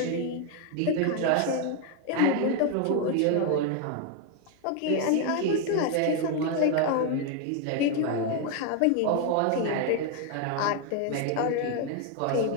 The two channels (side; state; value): both; different; correlation 0.01